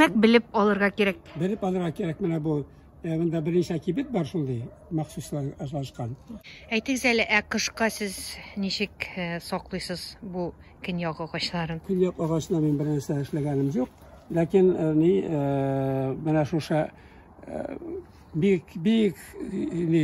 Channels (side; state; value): both; identical; correlation 1.00